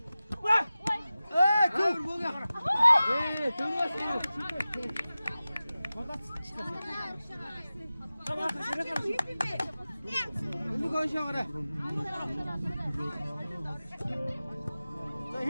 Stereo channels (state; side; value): inverted; both; correlation -0.96